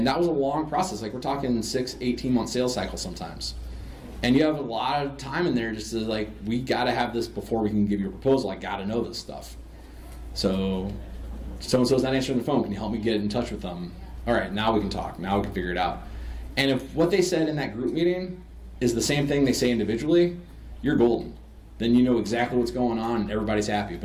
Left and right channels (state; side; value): identical; both; correlation 1.00